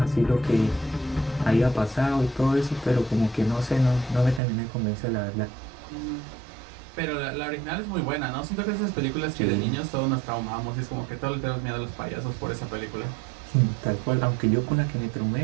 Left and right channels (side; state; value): left; drops out; at 4.4 s